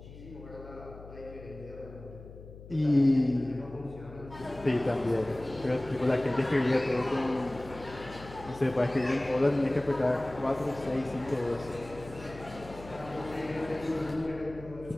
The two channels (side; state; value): left; noise; hum, 16 dB below the sound